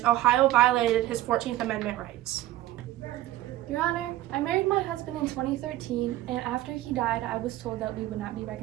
Ohio violated his 14th Amendment rights. Your Honor, I married my husband in 2013, and after he died, I was told that we would not be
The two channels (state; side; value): quieter; left; 15.2 dB